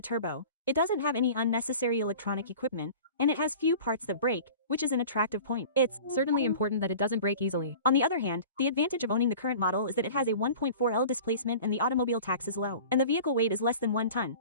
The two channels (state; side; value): inverted; both; correlation -0.41